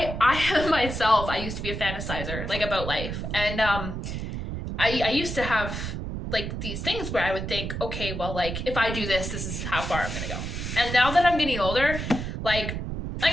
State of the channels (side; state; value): right; noise; rumble, 5 dB below the sound